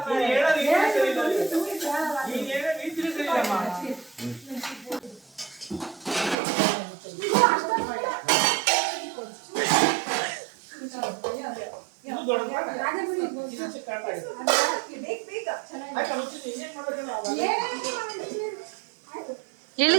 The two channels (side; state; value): left; drops out; at 6.4 s